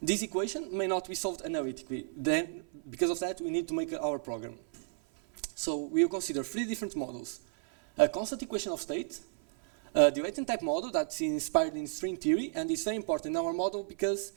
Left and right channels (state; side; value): silent; left; 56 dB below the other